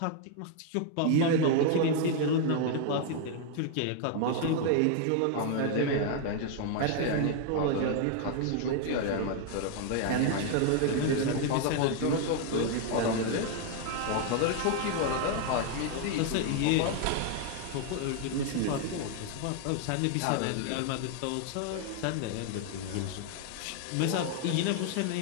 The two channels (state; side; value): different; both; correlation 0.00